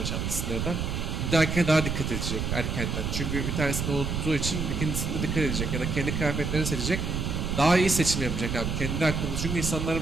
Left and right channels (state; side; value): noise; right; rumble, 2 dB below the sound